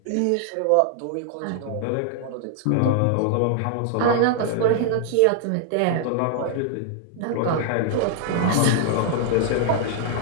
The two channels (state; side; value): different; both; correlation -0.01